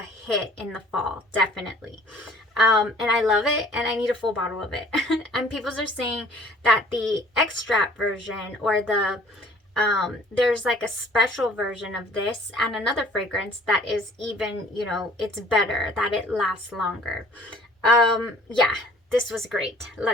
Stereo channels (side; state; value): both; normal; correlation 0.53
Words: hit in the fall, definitely. And I love it, and I need a full bottle of it. And people are saying that the extract version, or there's like a special version of this and another fragrance that is even, you know, it's better, that it lasts longer. Yeah, this was great.